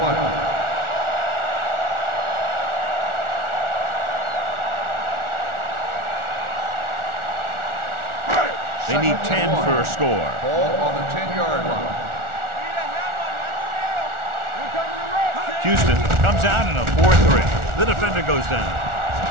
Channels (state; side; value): late; left; 1.4 ms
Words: They need 10 for a score. Ball on the 10-yard line. Houston comes out in a 4-3. The defender goes down.